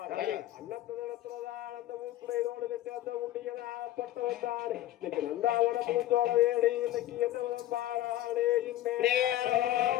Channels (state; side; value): quieter; right; 13.9 dB